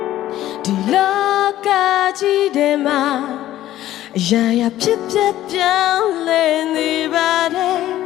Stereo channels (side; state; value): right; quieter; 13.7 dB